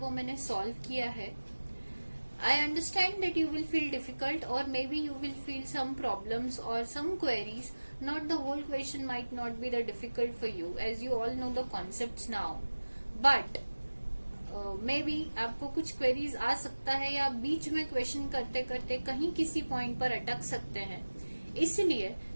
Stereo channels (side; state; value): both; inverted; correlation -1.00